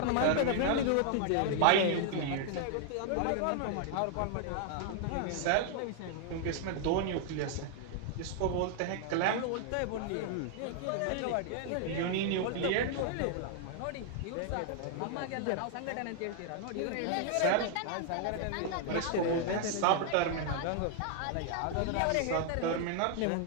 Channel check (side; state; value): both; different; correlation 0.00